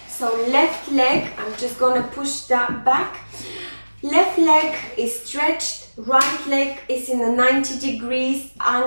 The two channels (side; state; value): both; inverted; correlation -1.00